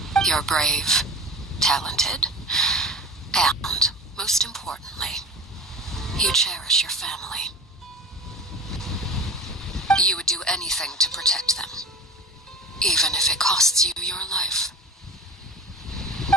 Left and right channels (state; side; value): normal; both; correlation 0.36